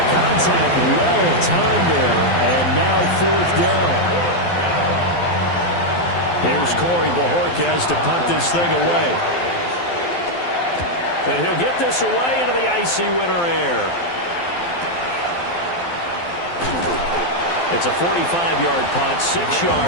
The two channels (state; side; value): late; right; 12 ms